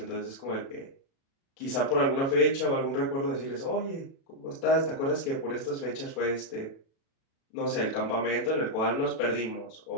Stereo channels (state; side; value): late; right; 36 ms